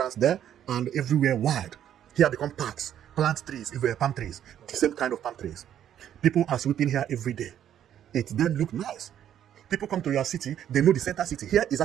there, and everywhere wide. Here become parks, plant trees, palm trees, the same kind of palm trees. People are sweeping here every day. It then look nice. People come to your city, they know the center city. Here is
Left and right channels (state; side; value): quieter; left; 10.4 dB